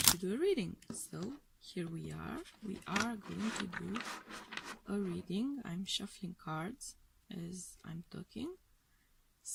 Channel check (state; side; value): identical; both; correlation 1.00